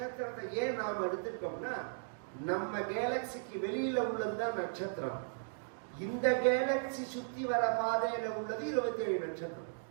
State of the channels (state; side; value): silent; left; digital silence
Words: ஏன் நாம் எடுத்துட்டோம்னா நம்ம கேலக்சிக்கு வெளியில உள்ளதுதான் நட்சத்திரம். இந்த கேலக்சி சுத்தி வர பாதையில உள்ளது 27 நட்சத்திரம்.